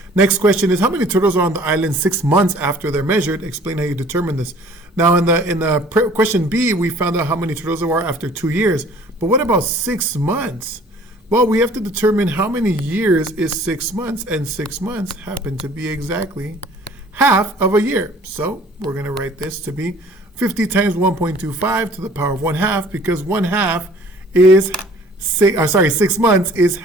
Next question is how many turtles are on the island 6 months after they're measured? Explain how you determine this. Now in the question B, we found out how many turtles there are after 2 years. But what about 6 months? Well, we have to determine how many years is 6 months, and 6 months happen to be exactly half of a year. So we're going to write this to be 50 times 1.25 to the power of 1/2, because 1/2 is 6 months is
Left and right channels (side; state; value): both; normal; correlation 0.52